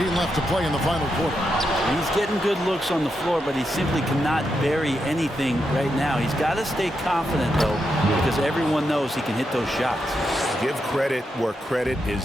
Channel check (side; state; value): both; normal; correlation 0.84